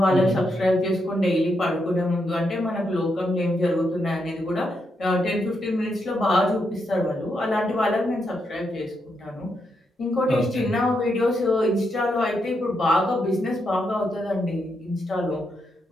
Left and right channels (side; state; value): both; normal; correlation 0.81